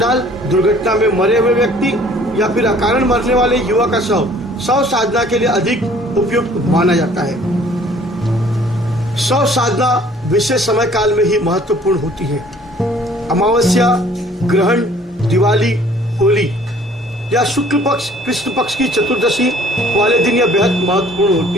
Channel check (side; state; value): both; normal; correlation 0.55